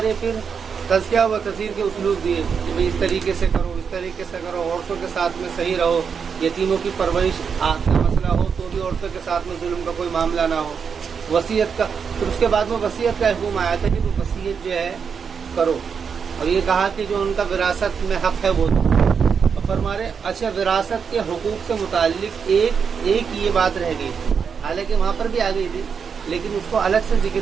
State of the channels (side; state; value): left; quieter; 6.4 dB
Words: پھر تذکیہ و تذکیر کے اسلوب دیے کہ بھئی اس طریقے سے کرو، اس طریقے سے کرو، عورتوں کے ساتھ میں صحیح رہو، یتیموں کی پرورش کا مسئلہ ہو تو بھی عورتوں کے ساتھ میں ظلم کا کوئی معاملہ نہ ہو. وصیت کا، پھر اس کے بعد میں وصیت کا حکم آیا تھا کہ وہ وصیت جو ہے کرو، اور یہ کہا کہ جو ان کا وراثت میں حق ہے وہ دو. اور فرما رہے اچھا وراثت کے حقوق سے متعلق ایک یہ بات رہ گئی تھی، حالانکہ وہاں پر بھی آ گئی تھی لیکن اس کو الگ سے